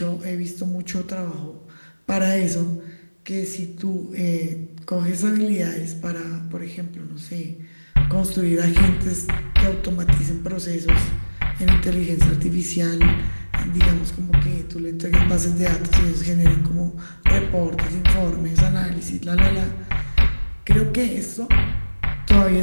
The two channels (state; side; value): inverted; both; correlation -1.00